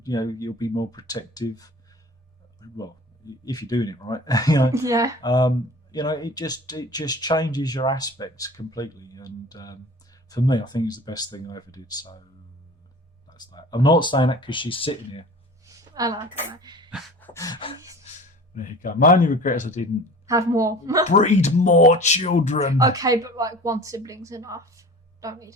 be more protective. Well, if you're doing it right, Yeah. It just changes your aspects completely. And for me, I think it's the best thing I ever did. So that's that. I'm not saying that because she's sitting here. I like it. There you go. My only regret is I didn't Have more. breed more children. Okay, but like one sibling's enough. Don't need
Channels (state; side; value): normal; both; correlation 0.41